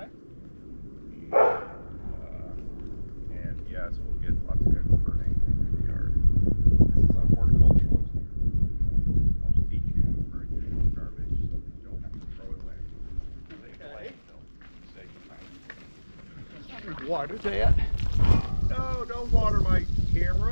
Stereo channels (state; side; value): inverted; both; correlation -1.00